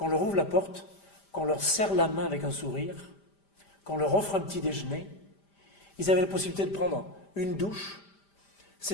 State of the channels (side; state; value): right; late; 5.0 ms